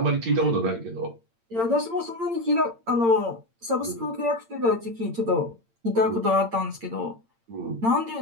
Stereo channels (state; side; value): late; left; 8.8 ms